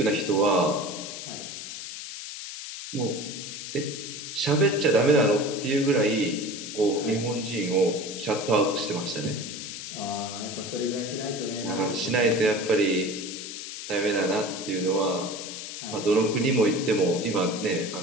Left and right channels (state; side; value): noise; left; hiss, 9 dB below the sound